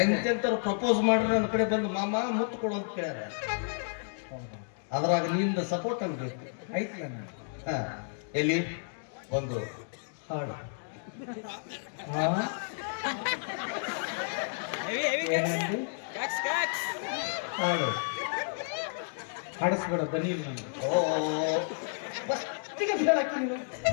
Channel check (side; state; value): right; silent; digital silence